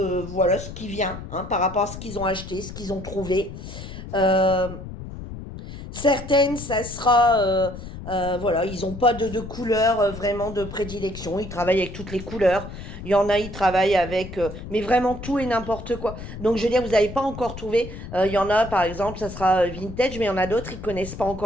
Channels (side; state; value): left; noise; rumble, 11 dB below the sound